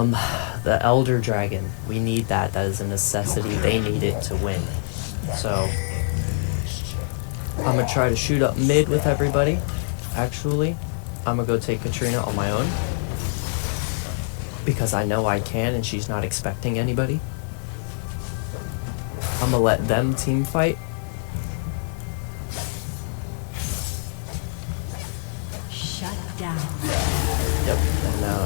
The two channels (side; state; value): right; silent; digital silence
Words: Elder Dragon, we need that. That is a necessity. They need it to win. So I'm gonna try to shoot up mid with everybody. Actually, I'm gonna go take Katrina on my own because I know I can and she's not expecting anybody. I'm gonna let them team fight. Shut down. Yep,